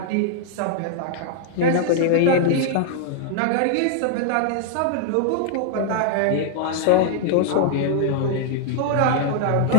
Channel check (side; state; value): both; different; correlation -0.01